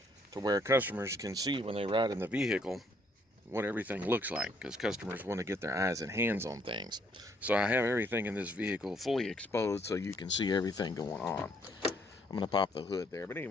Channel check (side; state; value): both; normal; correlation 0.68